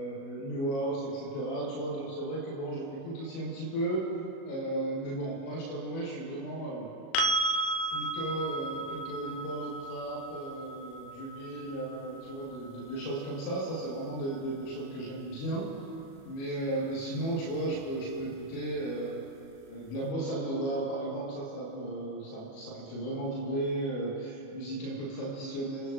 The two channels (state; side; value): late; right; 37 ms